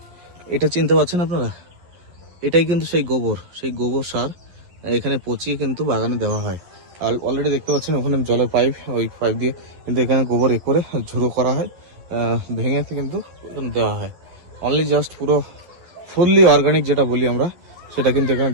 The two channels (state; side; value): late; left; 11 ms